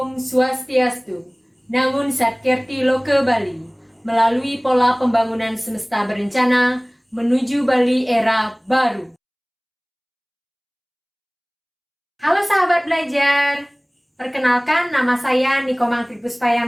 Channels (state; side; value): identical; both; correlation 1.00